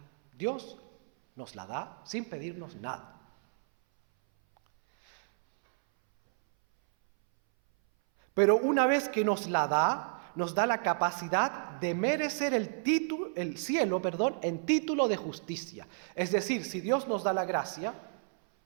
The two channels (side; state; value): left; silent; 57 dB below the other